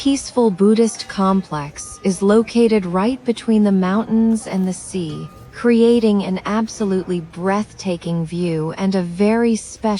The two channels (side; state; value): both; identical; correlation 1.00